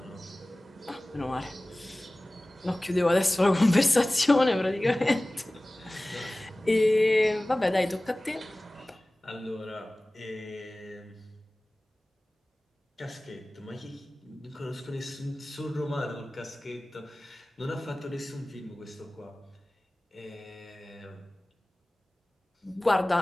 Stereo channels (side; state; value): both; normal; correlation 0.98